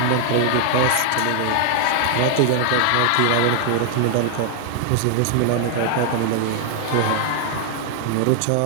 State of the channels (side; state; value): both; different; correlation 0.00